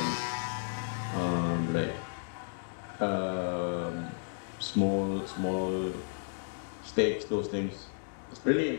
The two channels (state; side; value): silent; right; digital silence